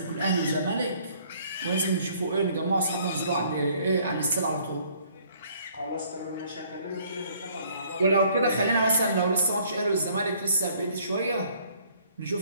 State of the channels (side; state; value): both; inverted; correlation -0.61